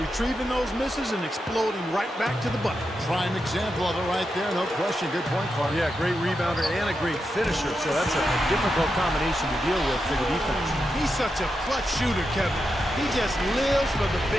those misses and exploding right back to the bucket. Prime example of it right there, no question. Good point, Clark. Yeah, great rebounder and a great finisher, so that's a difficult combination to deal with for the defense. He's such a clutch shooter, Kevin. He just lives for the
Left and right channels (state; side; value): normal; both; correlation 0.87